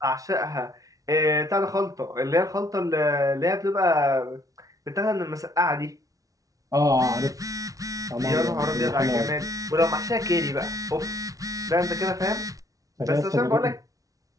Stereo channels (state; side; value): late; left; 0.17 ms